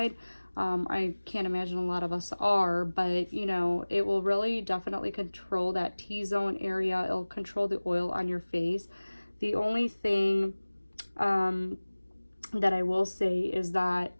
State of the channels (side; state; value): both; inverted; correlation -1.00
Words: I can't imagine a lot of us are, but you know, it will really definitely control that T-zone area. It'll control the oil on your face. The only thing that I will say is that